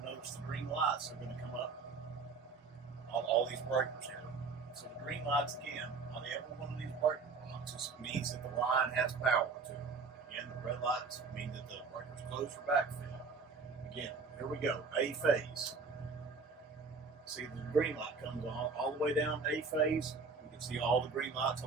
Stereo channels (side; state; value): left; quieter; 4.6 dB